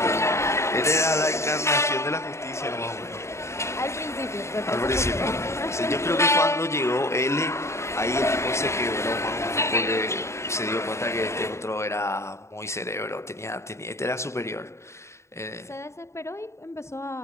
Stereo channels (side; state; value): right; late; 0.14 ms